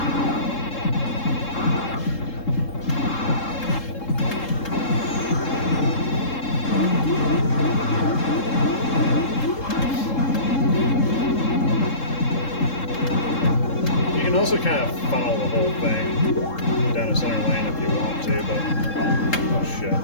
You can also kind of funnel the whole thing down a center lane if you want to, but oh shit.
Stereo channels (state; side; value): late; right; 3.7 ms